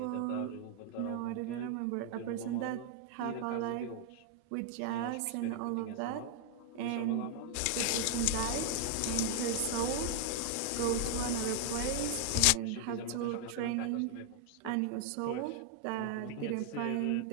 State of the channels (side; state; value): both; different; correlation 0.00